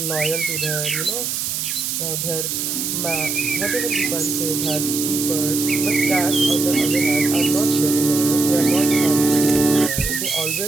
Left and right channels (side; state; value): right; noise; hiss, 2 dB below the sound